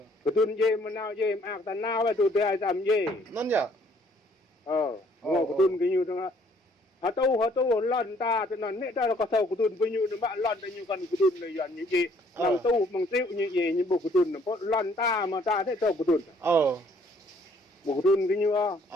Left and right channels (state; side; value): normal; both; correlation 0.63